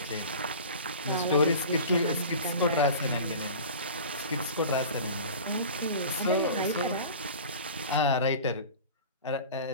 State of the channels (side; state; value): both; inverted; correlation -0.37